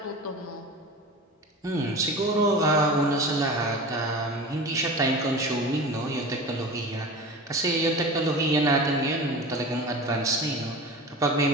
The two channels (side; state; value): both; normal; correlation 0.33